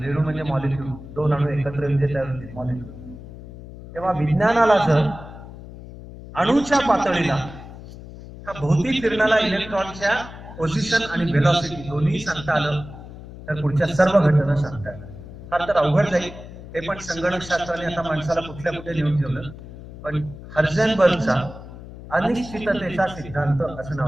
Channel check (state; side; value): noise; left; hum, 14 dB below the sound